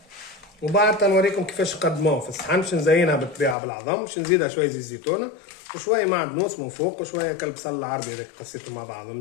وبعد تنوريكم كيفاش نقدموها في الصحن باش نزينها بالطبيعه بالعظم، باش نزيدها شويه زيت زيتونه وشويه معدنوس من فوق وشويه كالبصل العربي هذاك قصيته مع بعضهم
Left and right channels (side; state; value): right; drops out; at 3.6 s